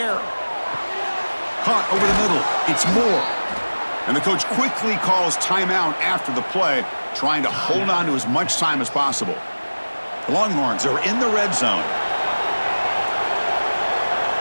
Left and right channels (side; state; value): both; inverted; correlation -1.00